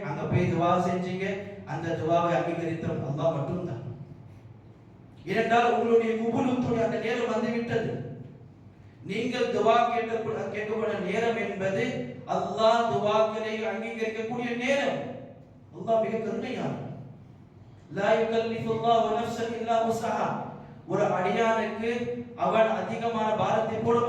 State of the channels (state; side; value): identical; both; correlation 1.00